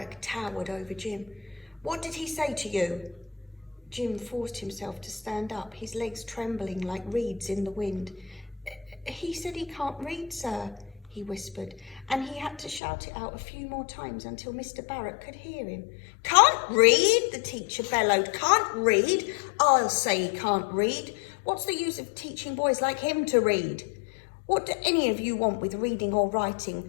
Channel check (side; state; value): right; drops out; at 12.8 s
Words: towered over Jim. "What did he say to you?" Jim forced himself to stand up, his legs trembling like reeds in the wind. "He said he can't read, sir," he whispered, and he had to shout it out a few more times until Mr. Barrett could hear him. "Can't read?" the teacher bellowed. "Can't read? I'll say he can't read. What's the use of teaching boys like him to read? What do any of you want with reading or